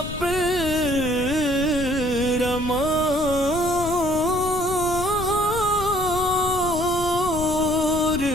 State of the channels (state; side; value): noise; left; rumble, 9 dB below the sound